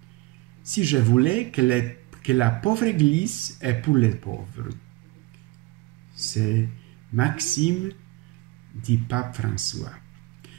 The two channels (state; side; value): quieter; left; 21.0 dB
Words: Si je voulais que la pauvre Église est pour les pauvres. C'est Maxime du pape François.